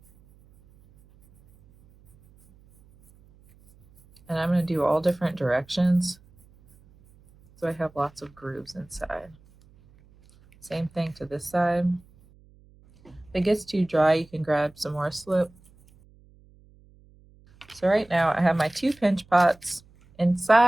And I'm going to do all different directions, so I have lots of grooves inside. Same thing to this side. If it gets too dry, you can grab some more slip. So right now I have my 2 pinch pots.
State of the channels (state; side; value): noise; right; hum, 28 dB below the sound